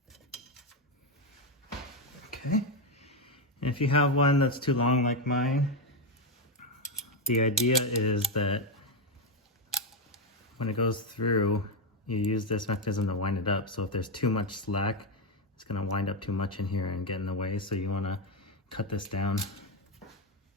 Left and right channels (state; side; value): normal; both; correlation 0.07